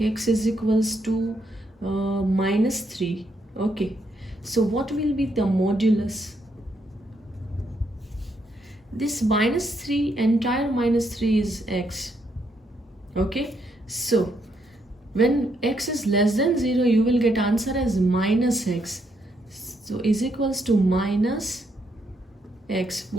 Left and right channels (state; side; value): normal; both; correlation 0.76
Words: x is equals to minus 3, okay, so what will be the modulus? This minus 3, entire minus 3 is x. Okay, so when x is less than 0, you will get answer as minus x. So is equals to minus x.